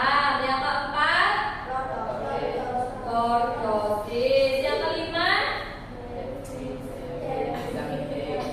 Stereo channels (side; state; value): both; identical; correlation 1.00